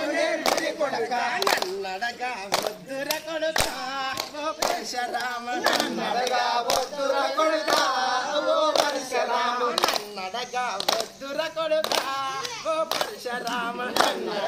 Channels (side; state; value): both; identical; correlation 1.00